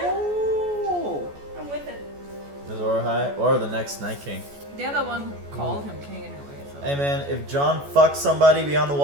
I'm with it. Azor Ahai or the next Night King. They're the one who called him king anyway. So. Hey man, if John fucks somebody beyond the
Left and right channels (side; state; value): left; late; 14 ms